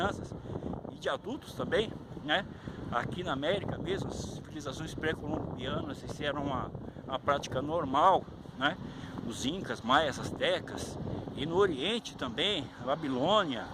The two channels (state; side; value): identical; both; correlation 1.00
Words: e de adultos também, né. Aqui na América mesmo, as civilizações pré-colombianas, isso era uma prática normal, né, os incas, maias, astecas, e no Oriente também, a Babilônia,